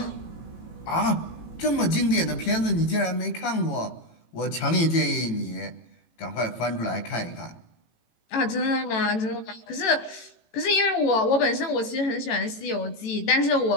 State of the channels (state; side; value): late; right; 18 ms